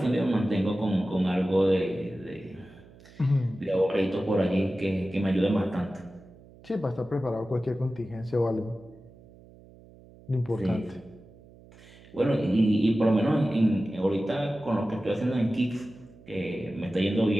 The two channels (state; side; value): noise; right; hum, 23 dB below the sound